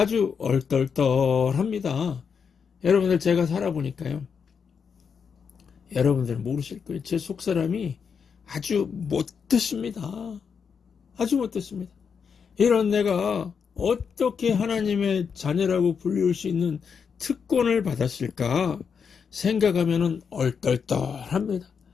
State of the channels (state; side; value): quieter; right; 6.4 dB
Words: 얼떨떨합니다. 여러분들 제가 살아보니까요. 여러분들 모르실 거예요. 제 속사람이 아주 못됐습니다. 하지 못했습니다. 이런 내가 어떻게 하나님의 자녀라고 불릴 수 있는 특권을 받았을까 생각하면 얼떨떨합니다.